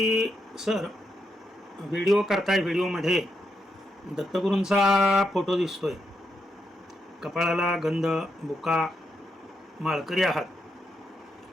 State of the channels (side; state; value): both; normal; correlation 0.82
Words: सर व्हिडिओ करताय, व्हिडिओमध्ये दत्तगुरूंचा फोटो दिसतोय, कपाळाला गंध, बुका, माळकरी आहात,